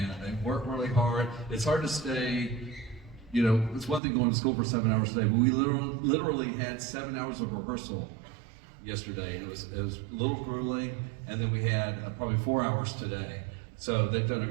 they work really hard. It's hard to stay, you know, it's one thing going to school for 7 hours a day, but we literally had 7 hours of rehearsal yesterday. It was a little grueling, and then we had probably 4 hours today. So they've done a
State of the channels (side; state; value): left; drops out; at 4.0 s